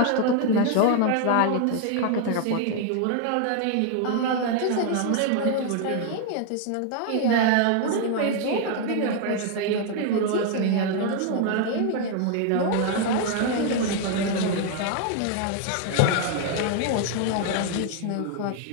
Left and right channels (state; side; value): different; both; correlation 0.00